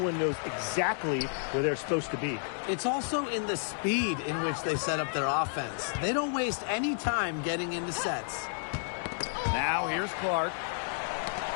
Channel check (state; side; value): silent; right; digital silence